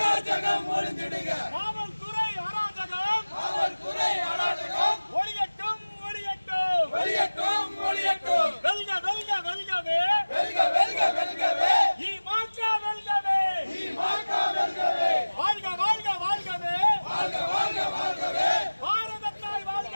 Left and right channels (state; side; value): inverted; both; correlation -1.00